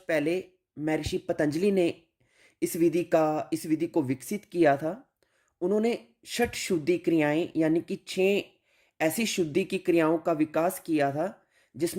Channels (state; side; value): identical; both; correlation 1.00